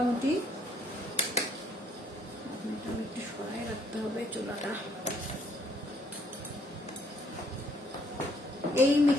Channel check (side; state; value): both; normal; correlation 0.66